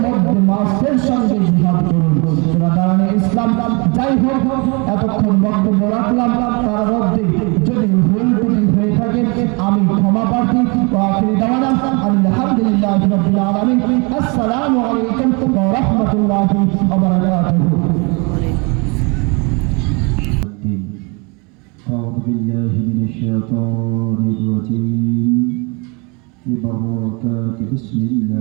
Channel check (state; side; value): quieter; left; 30.7 dB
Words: মধ্যে নফসের সঙ্গে জিহাদ করুন। বেরাদারানে ইসলাম যাই হোক, এতক্ষণ বক্তব্য রাখলাম, তার মধ্যে যদি ভুল ত্রুটি হয়ে থাকে আমি ক্ষমা প্রার্থী। আখির দাওয়ানা আলহামদুলিল্লাহি রাব্বিল আলামিন। আসসালামু আলাইকুম ওয়া রাহমাতুল্লাহি ওয়া বারাকাতুহু। أعوذ بالله من الشيطان الرجيم ببركات بسم